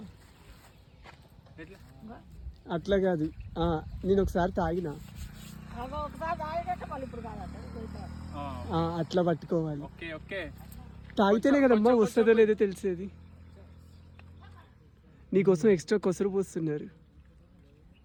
అట్లా కాదు. నేను ఒకసారి తాగినా, అట్లా పట్టుకోవాలి. ఓకే ఓకే, తాగితేనే కదమ్మా వస్తుందో లేదో తెలిసేది. నీకోసం ఎక్స్ట్రా కొసరు పోస్తున్నారు,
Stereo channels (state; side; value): identical; both; correlation 1.00